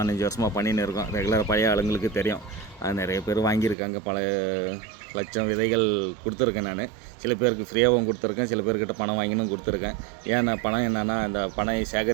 வருஷமாக பண்ணின்னு இருக்கோம். ரெகுலராக பழைய ஆளுங்களுக்கு தெரியும். நிறைய பேர் வாங்கியிருக்காங்க. பல லட்சம் விதைகள் கொடுத்துருக்கேன் நான். சில பேருக்கு ஃப்ரீயாகவும் கொடுத்துருக்கேன், சில பேர்கிட்ட பணம் வாங்கினும் கொடுத்துருக்கேன். ஏன்னா பணம் என்னென்னா, அந்த பனை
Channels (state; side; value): drops out; left; at 3.8 s